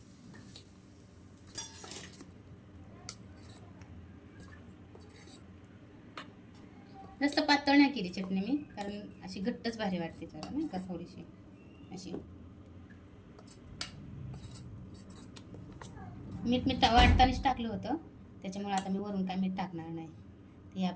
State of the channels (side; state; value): both; identical; correlation 1.00